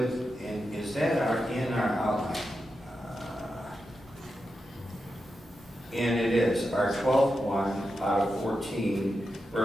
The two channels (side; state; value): both; normal; correlation 0.89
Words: and is that in our outline? And it is. Our 12th one out of 14,